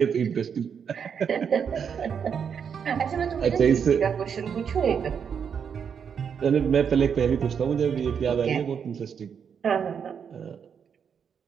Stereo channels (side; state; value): left; quieter; 7.2 dB